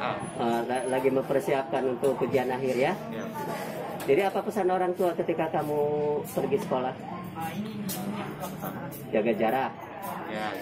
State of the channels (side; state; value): both; identical; correlation 1.00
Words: Lagi mempersiapkan untuk ujian akhir ya? Ya. Jadi apa pesan orang tua ketika kamu pergi sekolah? Jaga jarak, Ya,